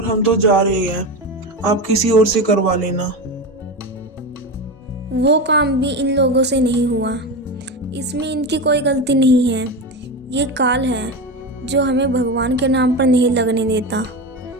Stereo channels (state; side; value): normal; both; correlation 0.20